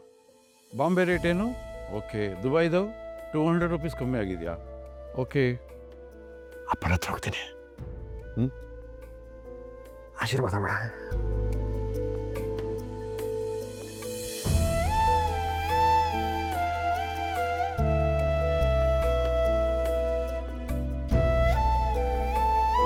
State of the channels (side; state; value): both; identical; correlation 1.00